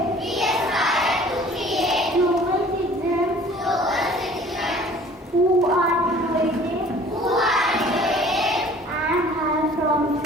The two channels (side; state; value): both; normal; correlation 0.50